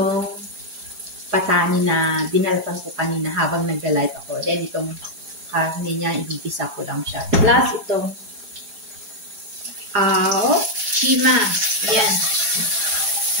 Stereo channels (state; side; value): late; left; 4.8 ms